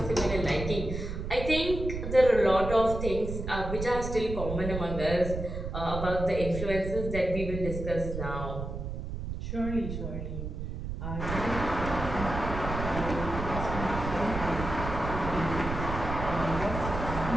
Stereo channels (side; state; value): right; noise; rumble, 5 dB below the sound